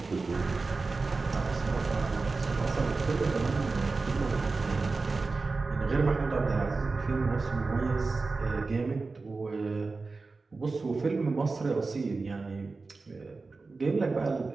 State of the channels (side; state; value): left; quieter; 3.9 dB